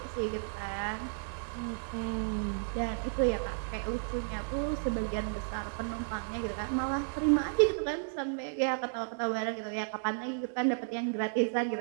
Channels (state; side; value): silent; left; digital silence